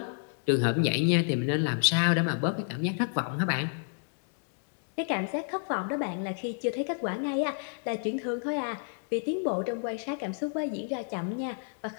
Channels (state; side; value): silent; right; 58 dB below the other